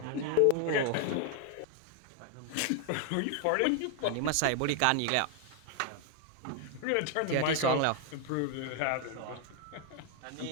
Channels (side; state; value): both; different; correlation 0.00